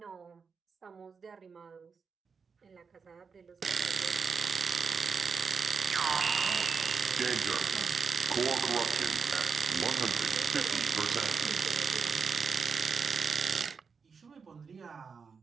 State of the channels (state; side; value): quieter; left; 5.5 dB